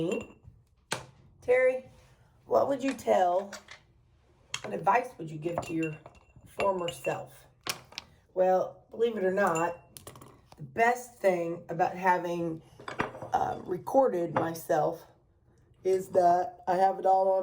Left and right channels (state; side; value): identical; both; correlation 1.00